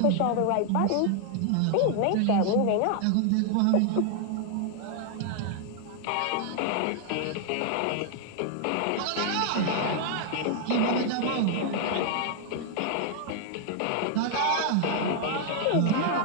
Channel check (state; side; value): different; both; correlation 0.00